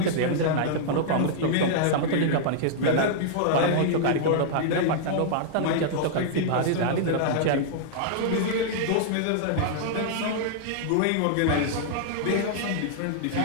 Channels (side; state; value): both; different; correlation -0.01